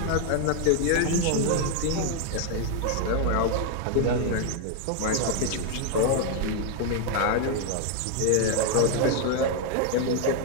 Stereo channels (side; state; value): both; different; correlation 0.00